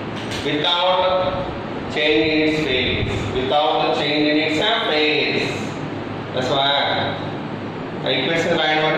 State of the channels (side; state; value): both; identical; correlation 1.00